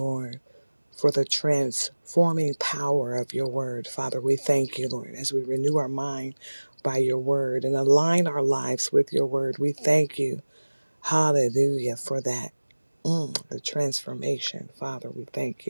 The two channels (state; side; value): inverted; both; correlation -1.00